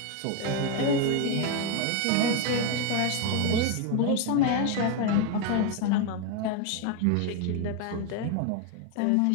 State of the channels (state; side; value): different; both; correlation 0.01